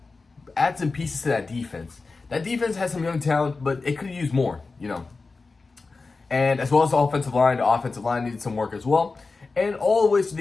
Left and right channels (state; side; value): quieter; right; 4.0 dB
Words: add some pieces to that defense. That defense has some young talent, but it could have used more, And as well as the offensive line needed some work as well. And all the ways